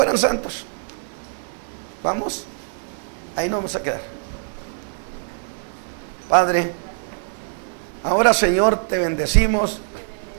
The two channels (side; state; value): left; silent; 63 dB below the other